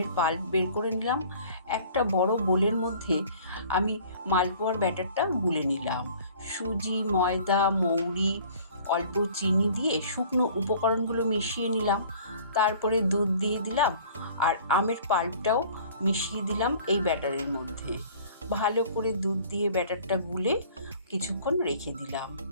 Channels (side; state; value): both; inverted; correlation -0.50